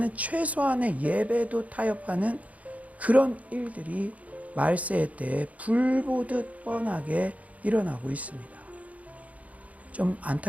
최소한의 예배도 타협하는 그런 일들이 말세의 때에 불보듯 뻔하게 일어나고 있습니다. 좀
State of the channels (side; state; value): left; late; 0.069 ms